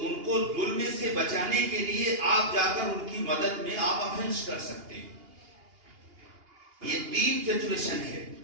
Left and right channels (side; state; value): left; late; 2.8 ms